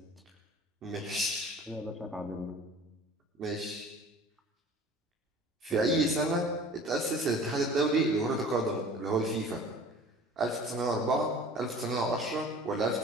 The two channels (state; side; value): normal; both; correlation 0.45